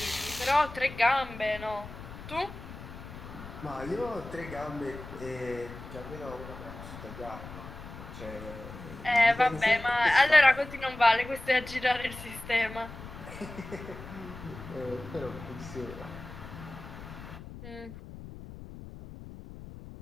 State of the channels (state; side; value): noise; left; rumble, 13 dB below the sound